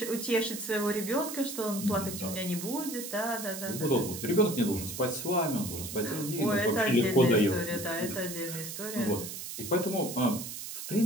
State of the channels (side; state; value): right; noise; hiss, 8 dB below the sound